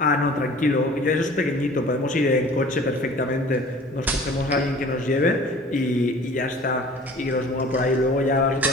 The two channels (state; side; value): normal; both; correlation 0.46